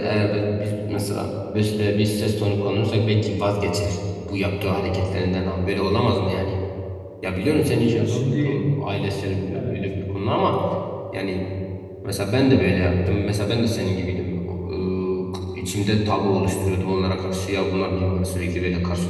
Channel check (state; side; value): identical; both; correlation 1.00